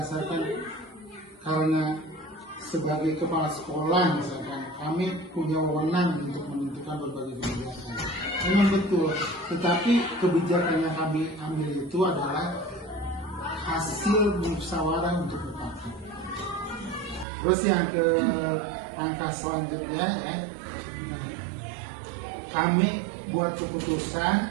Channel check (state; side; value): drops out; left; at 17.2 s